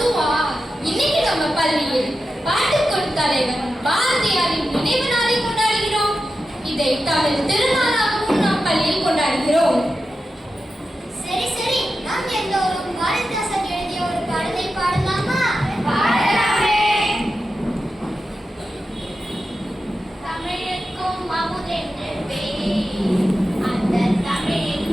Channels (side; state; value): both; normal; correlation 0.91